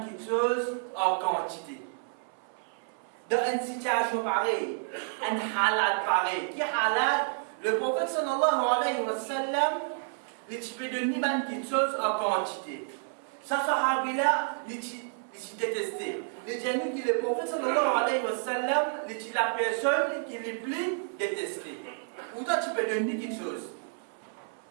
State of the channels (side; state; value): left; silent; 58 dB below the other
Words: chose en quantité. Dans une situation pareille, un halal pareil, qui halal, le prophète sallallahu alayhi wa sallam, tu peux donner quelque chose en quantité. Ça, sahabi-là, il détesté. Les gens qui le prophète sallallahu alayhi wa sallam, la personne qui est plus détestée. Ou toi, tu peux donner quelque chose.